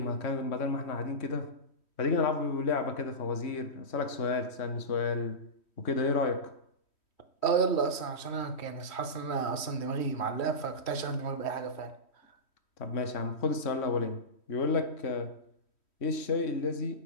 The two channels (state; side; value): late; right; 3.1 ms